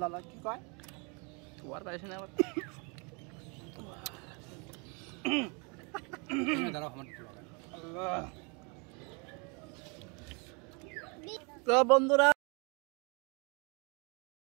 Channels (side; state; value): left; quieter; 32.8 dB